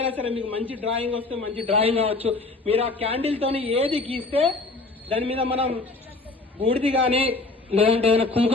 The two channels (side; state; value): right; quieter; 3.3 dB